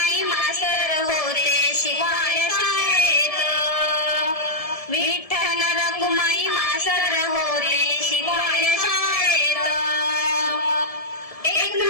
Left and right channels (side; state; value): right; late; 1.7 ms